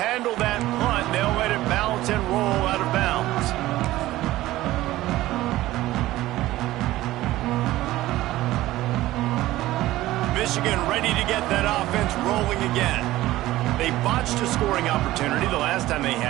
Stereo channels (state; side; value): quieter; left; 16.3 dB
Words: that punt. They'll let it bounce and roll out of bounds. Michigan ready to get that offense rolling again. They botched a scoring opportunity the last time they